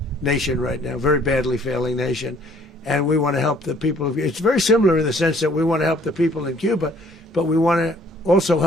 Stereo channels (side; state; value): both; normal; correlation 0.59